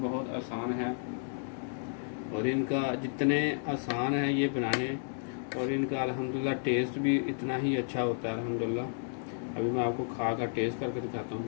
आसान है और इनका जितने आसान है ये बनाने और इनका अल्हम्दुलिल्लाह टेस्ट भी इतना ही अच्छा होता है अल्हम्दुलिल्लाह। अभी मैं आपको खा कर टेस्ट करके दिखाता हूँ।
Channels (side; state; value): right; silent; digital silence